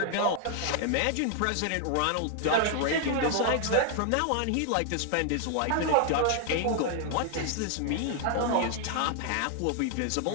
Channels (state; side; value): different; both; correlation 0.00